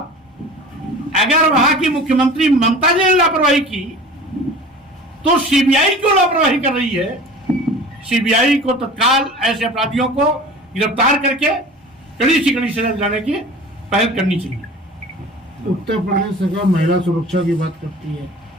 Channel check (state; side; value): normal; both; correlation 0.40